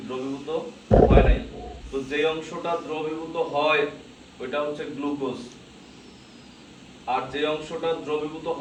দ্রবীভূত হয় নাই। তো যে অংশটা দ্রবীভূত হয় ওইটা হচ্ছে গ্লুকোজ, আর যে অংশটা দ্রবীভূত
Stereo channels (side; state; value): both; identical; correlation 1.00